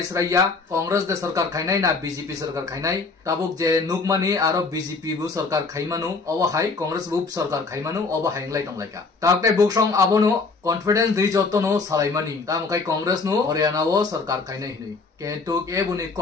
कांग्रेस दे सरकार खाइनाय ना बीजेपी सरकार खाइनाय ताबुक जे नुकमानि आरो बीजेपी बु सरकार खाइमानो अब हाय कांग्रेस बु सरकार खाइमानो अब हायंलाय दंलायका ताकते बुकसं आबोनो कॉन्फिडेंस दै जतनो सालायमानि तामखाय कांग्रेस नो हरियाणा वो सरकार खाइनाय हिनै केन्तु केबुनि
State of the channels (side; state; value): right; quieter; 4.2 dB